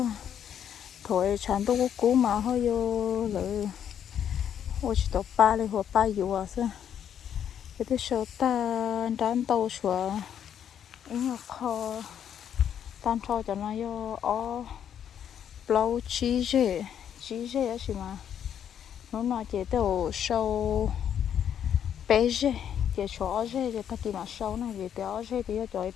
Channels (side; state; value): right; quieter; 9.2 dB